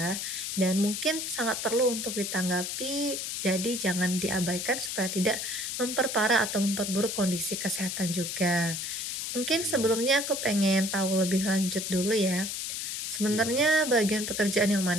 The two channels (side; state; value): left; noise; hiss, 4 dB below the sound